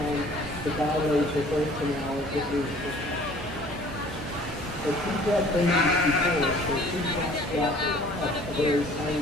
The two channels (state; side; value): normal; both; correlation 0.52